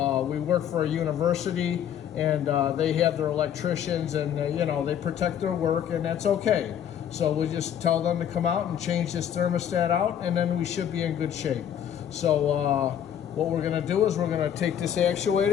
university, and they have their electricians, and you know, they protect their work, and that's okay. So we just tell them to come out and change this thermostat out, and then we should be in good shape. So what we're going to do is we're going to take this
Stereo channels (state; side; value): quieter; right; 9.5 dB